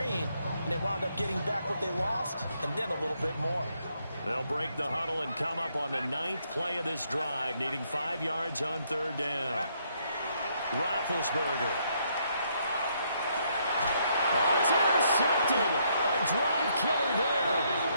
and they wound up getting back what they lost and then a little bit more. They'll break the huddle and come up on the 9th play of this drive, needing 5 yards on 3rd down. Roethlisberger. Oh, it's intercepted. A drive killer there.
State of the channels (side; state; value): both; inverted; correlation -0.72